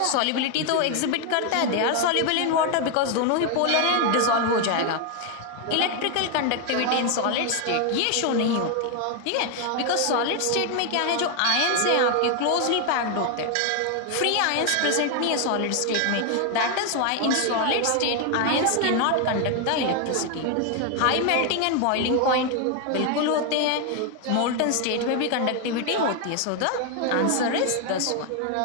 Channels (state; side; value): different; both; correlation 0.01